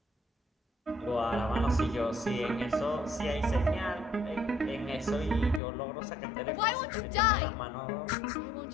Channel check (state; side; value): drops out; right; at 5.6 s